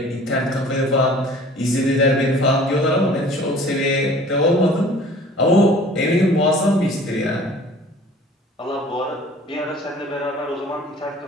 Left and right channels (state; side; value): normal; both; correlation 0.49